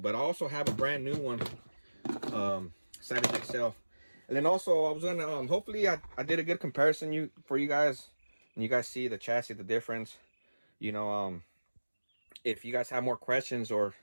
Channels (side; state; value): both; inverted; correlation -1.00